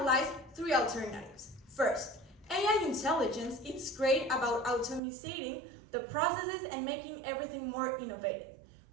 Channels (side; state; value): left; drops out; at 5.0 s